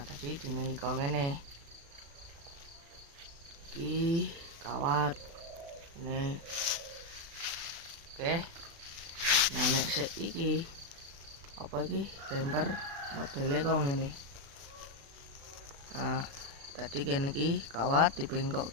tadi dini kok ngene. Iki kawat. Nih. Oke. Nah, nek sik iki apa iki bumper modele kok ngene. Nah, tadi kene iki kawat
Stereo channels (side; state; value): left; late; 36 ms